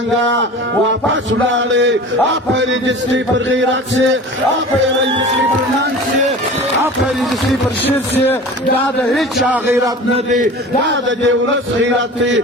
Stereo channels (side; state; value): both; normal; correlation 0.38